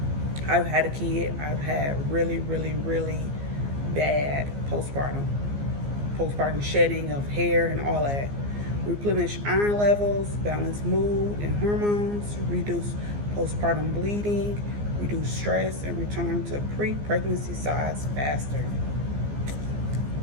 I've had a kid, I've had really bad postpartum shedding of hair and all that. Replenish iron levels, balance mood and hormones, reduce postpartum bleeding, reduce stress, and return to pre-pregnancy size faster.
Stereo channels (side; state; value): left; late; 15 ms